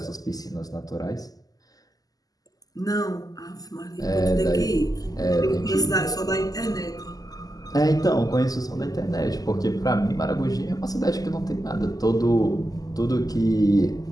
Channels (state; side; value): late; right; 0.17 ms